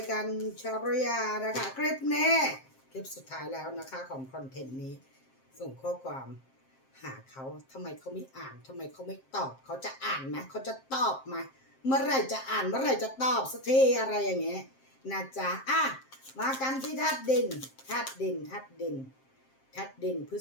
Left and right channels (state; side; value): late; right; 7.6 ms